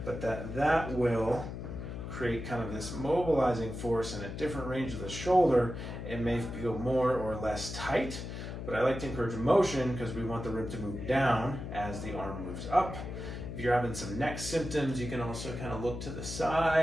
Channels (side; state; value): left; noise; hum, 7 dB below the sound